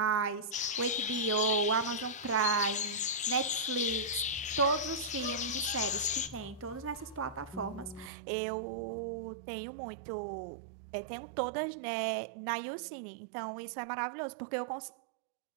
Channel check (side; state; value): left; drops out; at 8.1 s